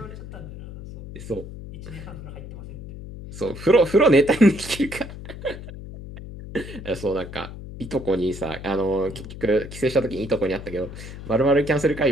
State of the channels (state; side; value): noise; left; hum, 12 dB below the sound